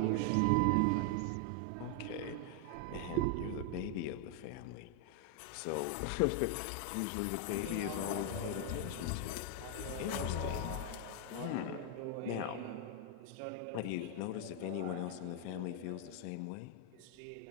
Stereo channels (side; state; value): both; different; correlation 0.00